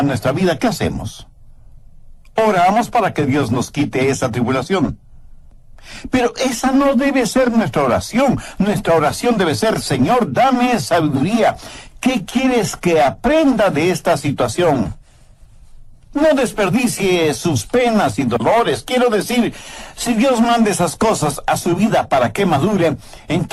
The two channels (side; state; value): both; identical; correlation 1.00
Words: nuestra vida, ¿qué hacemos? Oramos para que Dios nos quite esa tribulación. Pero esa no debe ser nuestra oración. Nuestra oración debe ser: Señor, dame sabiduría. ¿Qué quieres que aprenda de esta situación? No desperdicie sus penas y dolores. Quiero decir, si Dios manda esas cosas a su vida para que madure,